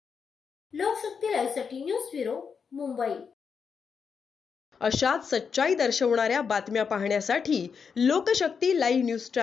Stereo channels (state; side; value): quieter; right; 6.1 dB